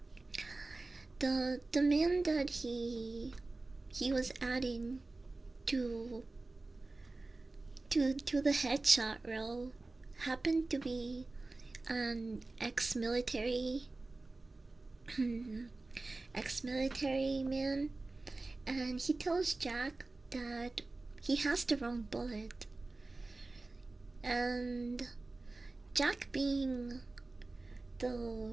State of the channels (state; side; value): quieter; left; 3.3 dB